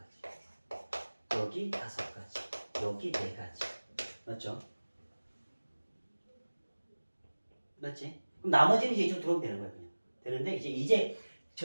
여기 5가지. 여기 4가지. 맞죠? 맞지? 그럼 나머지는 이제 이쪽으로 들어오면 되는 거야, 그냥. 되는데, 이제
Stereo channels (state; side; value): inverted; both; correlation -1.00